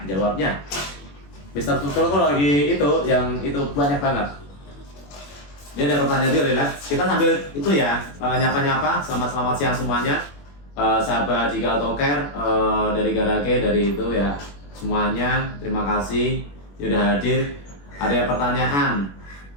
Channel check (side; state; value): right; late; 21 ms